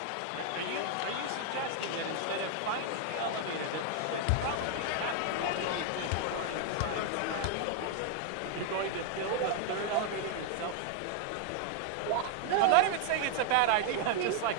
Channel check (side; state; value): both; different; correlation 0.00